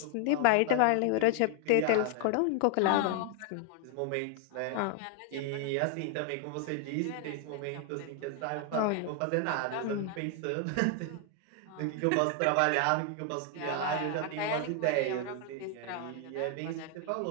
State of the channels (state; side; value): different; both; correlation 0.00